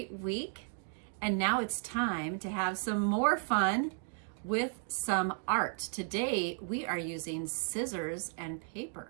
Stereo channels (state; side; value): silent; left; 55 dB below the other